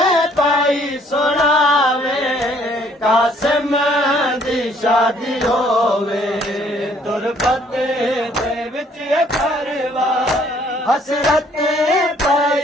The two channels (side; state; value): both; normal; correlation 0.62